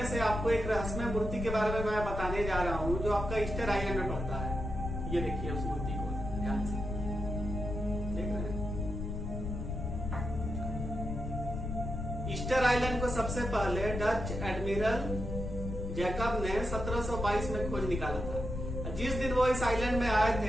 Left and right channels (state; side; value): noise; left; rumble, 5 dB below the sound